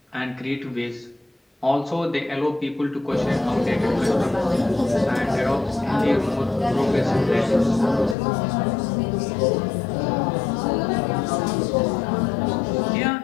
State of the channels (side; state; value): right; drops out; at 8.2 s